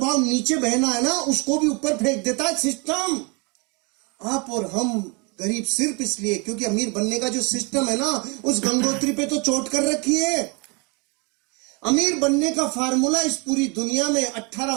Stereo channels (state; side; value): quieter; left; 30.8 dB